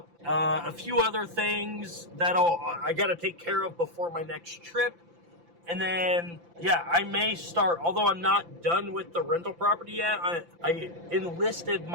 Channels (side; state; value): left; late; 5.9 ms